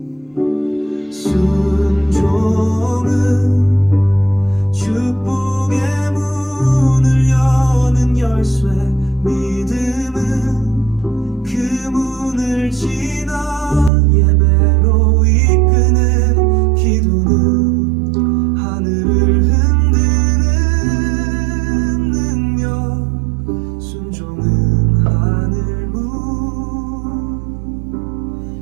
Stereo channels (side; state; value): left; drops out; at 13.9 s